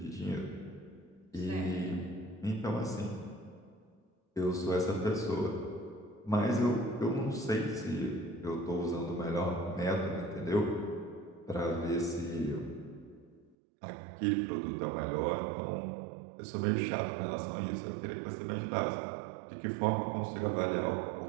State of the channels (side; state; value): left; drops out; at 13.6 s